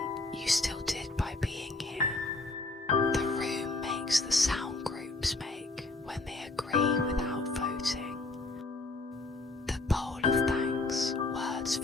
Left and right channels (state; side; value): quieter; right; 3.2 dB